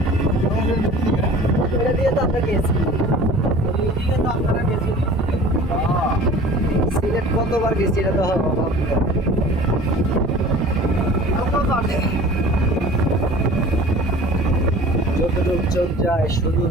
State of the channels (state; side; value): normal; both; correlation 0.44